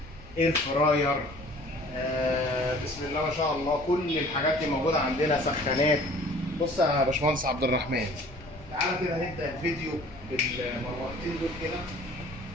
اير فراير، بسم الله ما شاء الله كل الحاجات دي موجوده عندنا، سخانات. بص يا باشمهندس عبد الرحمن، تعالى كده نبدا الفيديو بالمروحتين دول. كده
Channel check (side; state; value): left; noise; rumble, 19 dB below the sound